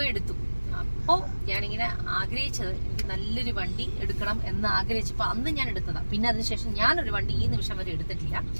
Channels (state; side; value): inverted; both; correlation -1.00